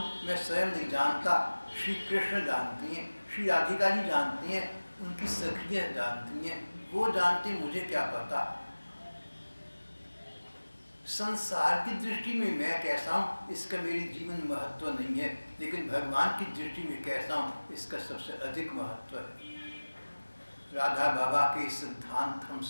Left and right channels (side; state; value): both; inverted; correlation -1.00